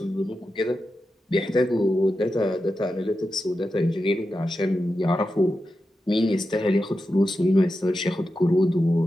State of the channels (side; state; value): both; normal; correlation 0.90